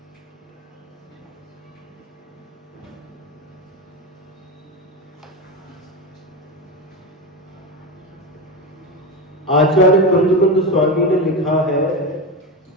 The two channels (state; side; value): normal; both; correlation 0.19